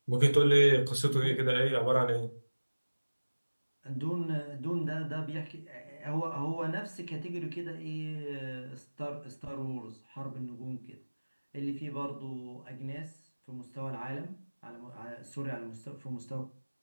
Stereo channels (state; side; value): inverted; both; correlation -1.00